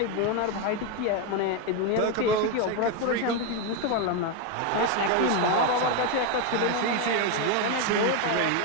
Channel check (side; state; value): both; different; correlation 0.02